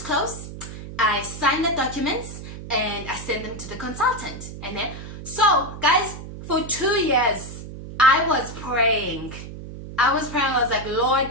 I signed the documents and I sent them to the consultant. And then, so guys, for 2 years I was praying. I was like,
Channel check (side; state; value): right; noise; hum, 11 dB below the sound